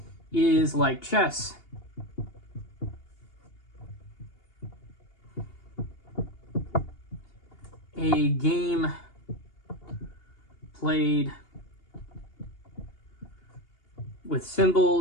is like chess. A game played with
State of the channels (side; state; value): right; late; 2.8 ms